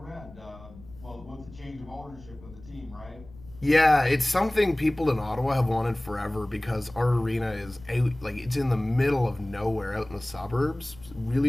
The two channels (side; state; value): left; noise; rumble, 20 dB below the sound